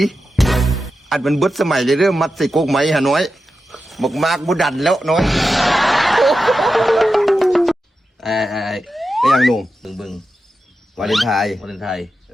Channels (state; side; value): normal; both; correlation 0.91